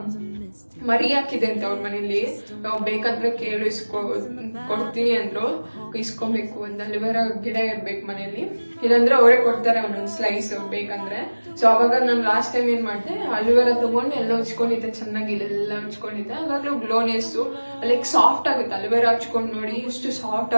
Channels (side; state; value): both; inverted; correlation -1.00